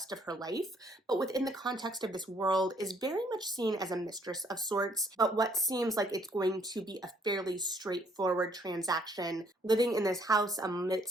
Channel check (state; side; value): normal; both; correlation 0.65